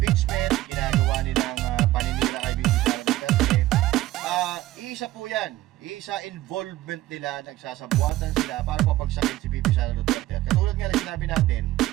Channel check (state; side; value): quieter; left; 15.8 dB